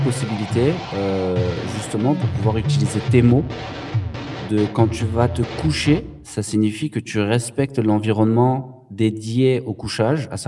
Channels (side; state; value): both; identical; correlation 1.00